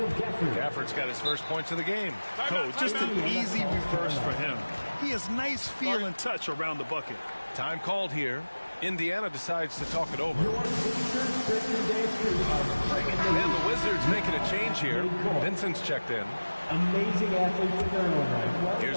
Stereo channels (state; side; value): inverted; both; correlation -1.00